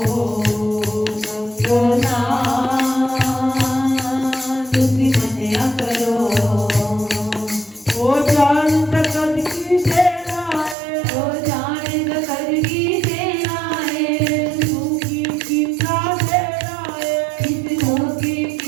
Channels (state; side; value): drops out; left; at 10.8 s